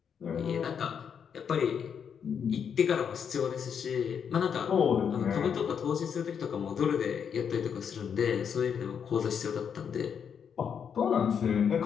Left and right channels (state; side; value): quieter; right; 7.4 dB